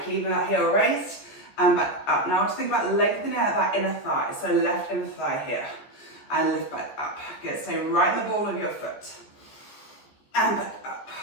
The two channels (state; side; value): late; right; 14 ms